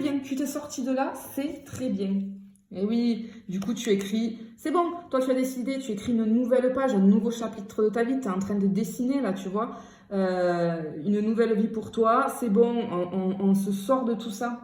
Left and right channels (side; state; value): both; identical; correlation 1.00